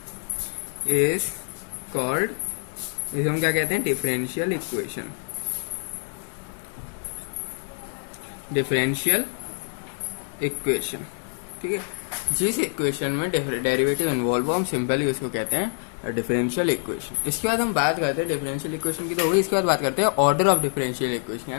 is called, इसे हम क्या कहते हैं, डिफरेंशियल इक्वेशन। ठीक है, जिस इक्वेशन में डेरिवेटिव इन्वॉल्व हो हम सिंपली उसको कहते हैं डिफरेंशियल इक्वेशन। इसके बाद हम बात करते हैं डिफरेंशियल इक्वेशन की तो होगी। इसके बाद बात करते हैं ऑर्डर ऑफ डिफरेंशियल इक्वेशन।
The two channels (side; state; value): right; silent; 61 dB below the other